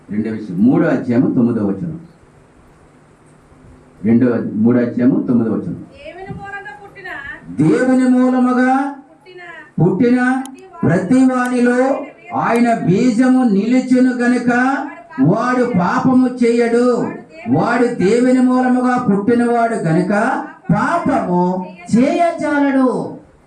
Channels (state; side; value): identical; both; correlation 1.00